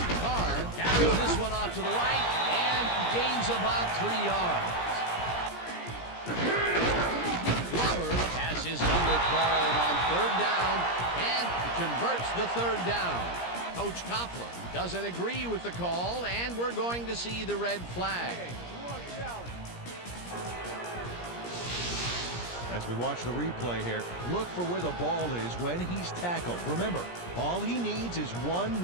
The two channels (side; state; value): right; late; 17 ms